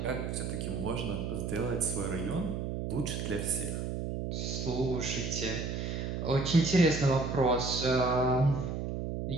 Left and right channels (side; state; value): right; noise; hum, 3 dB below the sound